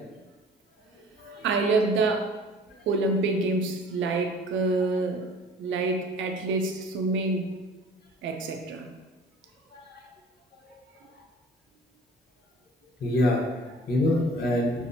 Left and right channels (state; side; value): normal; both; correlation 0.48